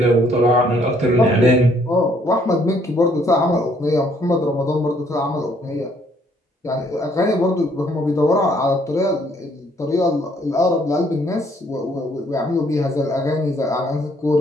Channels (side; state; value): both; normal; correlation 0.65